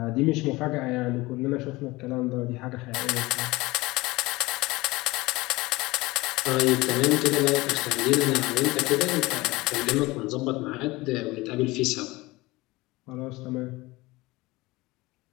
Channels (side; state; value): right; quieter; 21.2 dB